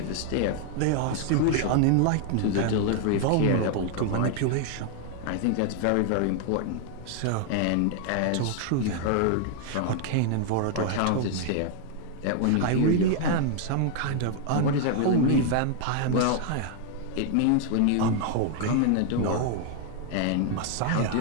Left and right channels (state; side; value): different; both; correlation 0.00